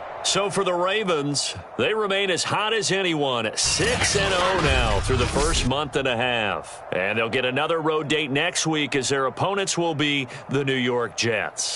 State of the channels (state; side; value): identical; both; correlation 1.00